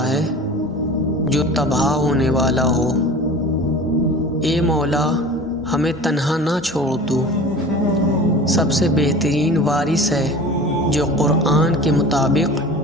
ہے جو تباہ ہونے والا ہو۔ اے مولا، ہمیں تنہا نہ چھوڑ تو، سب سے بہترین وارث ہے جو قرآن کے مطابق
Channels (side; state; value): both; normal; correlation 0.38